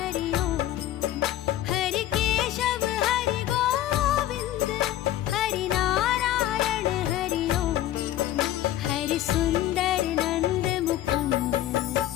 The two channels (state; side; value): quieter; right; 13.3 dB